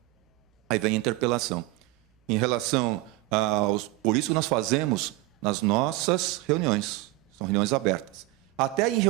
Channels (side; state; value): left; quieter; 19.5 dB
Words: Aí vem a interpelação. Em relação aos... Por isso que nós fazemos nas nossas reuniões. São reuniões abertas. Até em